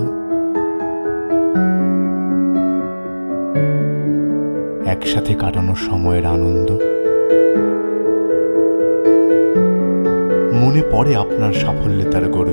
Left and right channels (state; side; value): inverted; both; correlation -1.00